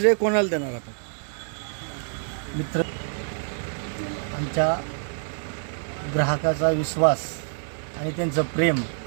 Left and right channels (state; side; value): silent; left; 61 dB below the other